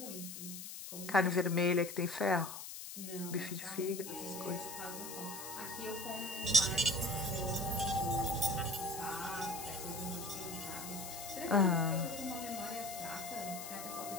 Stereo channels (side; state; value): left; noise; hiss, 9 dB below the sound